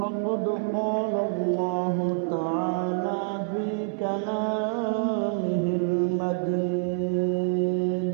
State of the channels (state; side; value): silent; left; 60 dB below the other